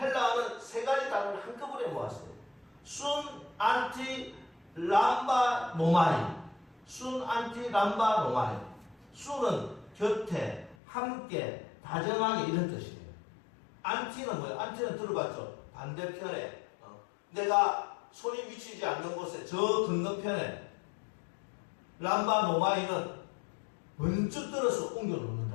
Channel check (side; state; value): right; drops out; at 10.8 s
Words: 세 가지 단어를 한꺼번에 모았어요. 순, 안티, 람바, 노마이. 순, 안티, 람바, 노마이. 순은 곁에, 함께, 다정하게 이런 뜻이에요. 안티는 뭐예요? 안티는 들어봤죠? 반대편에 내가 손이 미치지 않는 곳에 저 건너편에. 람바, 노마이는 번쩍 들어서